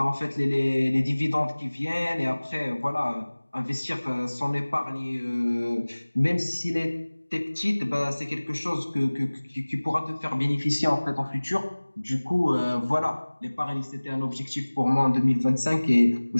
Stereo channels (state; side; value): inverted; both; correlation -1.00